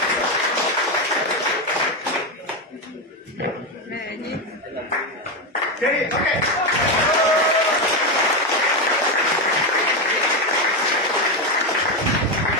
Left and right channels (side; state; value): both; normal; correlation 0.10